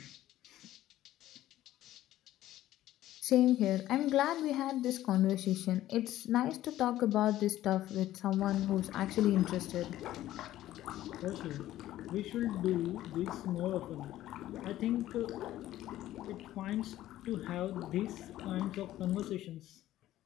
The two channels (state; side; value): quieter; right; 14.1 dB